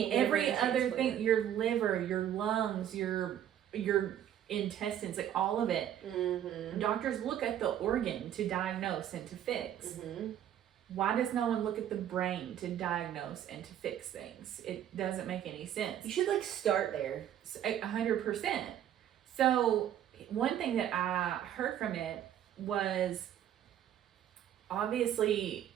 every other thing, your liver, your lungs, your intestines, like all of it, doctors look at the organ to diagnose and to fix. Why does no one look at the brain to diagnose and to fix things? It doesn't make any sense. You should like start there. 100%. So one thing that I heard from it was obviously,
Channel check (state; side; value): quieter; left; 10.7 dB